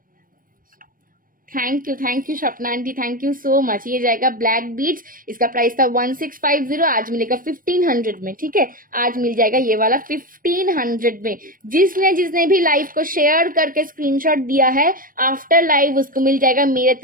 Thank you Swapna aunty, thank you so much. ये जाएगा ब्लैक बीट्स, इसका प्राइस था 1650, आज मिलेगा 1500 में। ठीक है, आज मिल जाएगा ये वाला 1500 में। जिसने भी लाइव को शेयर करके स्क्रीनशॉट दिया है आफ्टर लाइव, उसको मिल जाएगा मेरे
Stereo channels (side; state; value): left; late; 0.41 ms